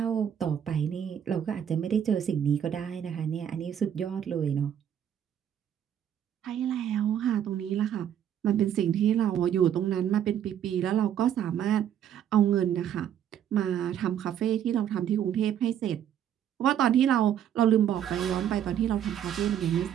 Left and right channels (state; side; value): quieter; left; 9.6 dB